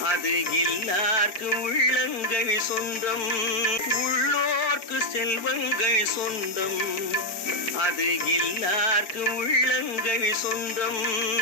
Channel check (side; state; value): right; late; 4.5 ms